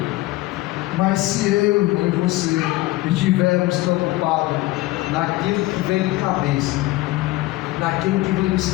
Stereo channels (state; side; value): quieter; right; 18.5 dB